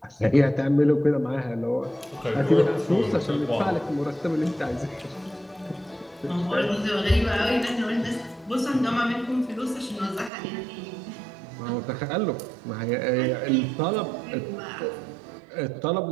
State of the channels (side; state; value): left; drops out; at 10.3 s